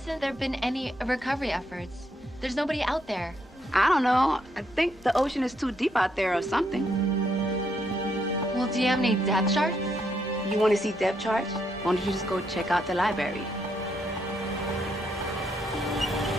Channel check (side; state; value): both; normal; correlation 0.76